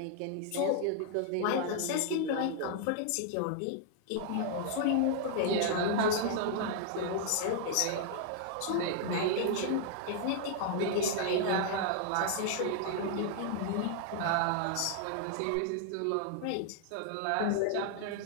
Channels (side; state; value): both; different; correlation 0.00